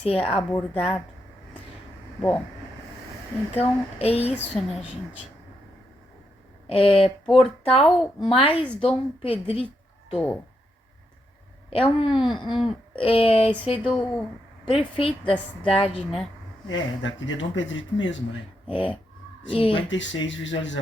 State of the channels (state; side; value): normal; both; correlation 0.81